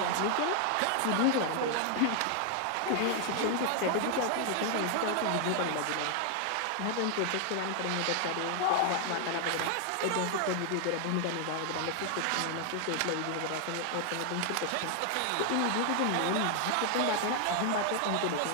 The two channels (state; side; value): different; both; correlation 0.00